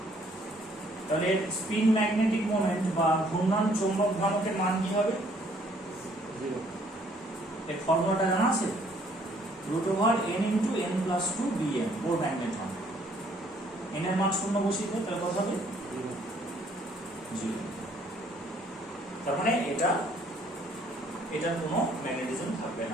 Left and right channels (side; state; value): both; normal; correlation 0.63